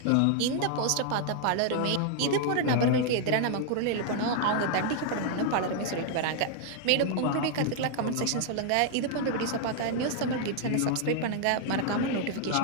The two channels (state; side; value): different; both; correlation 0.00